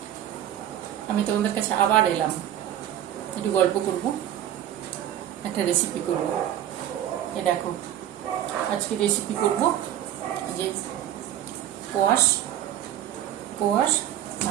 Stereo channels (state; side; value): quieter; left; 11.6 dB